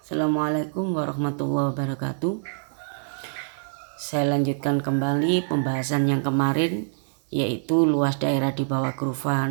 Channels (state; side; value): silent; left; digital silence